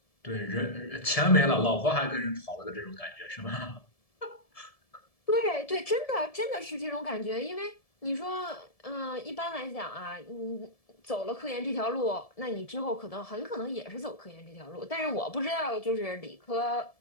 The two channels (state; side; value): late; right; 1.7 ms